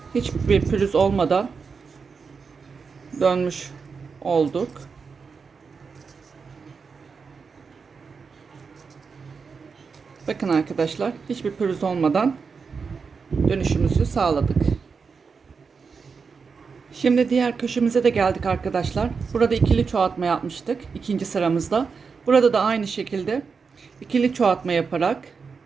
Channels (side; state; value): left; quieter; 5.3 dB